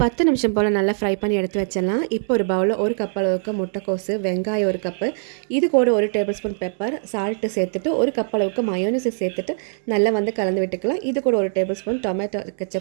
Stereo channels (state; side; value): silent; left; digital silence